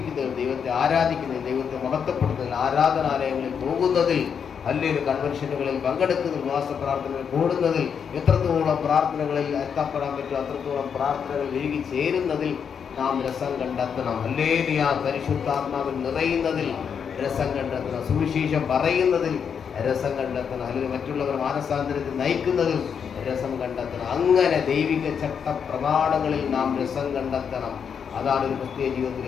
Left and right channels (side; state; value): right; quieter; 7.1 dB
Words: ദൈവത്തെ ആരാധിക്കുന്നതിൽ, ദൈവത്തെ മഹത്വപ്പെടുന്നതിൽ, ആരാധനാലയങ്ങളിൽ പോകുന്നതിൽ, അല്ലെങ്കിൽ കൺവെൻഷനുകളിൽ പങ്കെടുക്കുന്നതിൽ, ഉപവാസ പ്രാർത്ഥനകൾ കൂടുന്നതിൽ, എത്രത്തോളം പ്രാർത്ഥനകളിൽ എത്തപ്പെടാൻ പറ്റും അത്രത്തോളം പ്രാർത്ഥനകൾ ഒഴുകി ചേരുന്നതിൽ നാം രസം കണ്ടെത്തണം. ഹല്ലേലൂയ. പരിശുദ്ധാത്മാവിൽ നിറയുന്നതിൽ രസം കണ്ടെത്തണം. സുവിശേഷം പറയുന്നതിൽ രസം കണ്ടെത്തണം. അല്ലെങ്കിൽ മറ്റുള്ളവർ മാനസാന്തരത്തിൽ നയിക്കുന്നതിൽ രസം കണ്ടെത്തണം. അങ്ങനെ ദൈവിക ചട്ട പ്രമാണങ്ങളിൽ നാം രസം കണ്ടെത്തണം. അതാണ് ഒരു ക്രിസ്തീയ